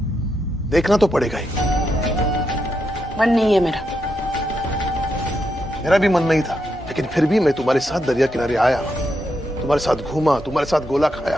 देखना तो पड़ेगा ही। मन नहीं है मेरा भी मन नहीं था, लेकिन फिर भी मैं तुम्हारे साथ दरिया किनारे आया, तुम्हारे साथ घूमा, तुम्हारे साथ गोला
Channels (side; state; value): both; normal; correlation 0.83